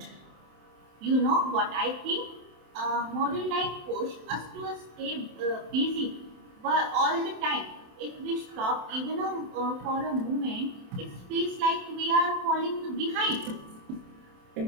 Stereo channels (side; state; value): left; late; 27 ms